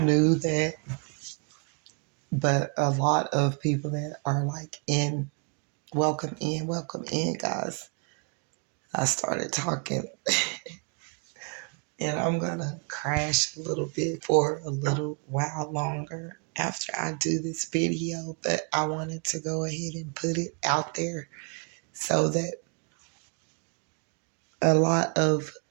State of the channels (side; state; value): left; quieter; 37.1 dB